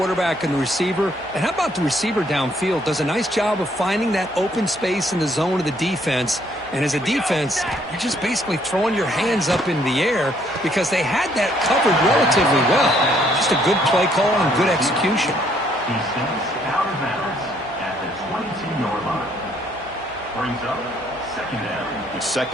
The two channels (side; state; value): right; noise; hum, 27 dB below the sound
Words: and the receiver. And how about the receiver downfield? Does a nice job of finding that open space in the zone of the defense. And as a defense, you're just basically throwing your hands up in the air because they had that covered relatively well. Just a good play call and good execution. He steps out of bounds at the 22-yard line. Brings up 2nd down. It's